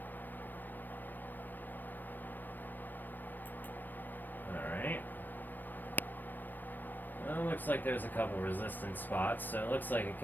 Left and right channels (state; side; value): late; right; 0.090 ms